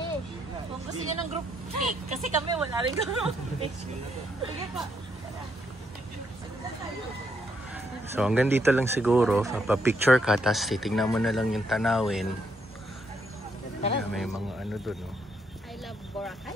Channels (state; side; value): normal; both; correlation 0.75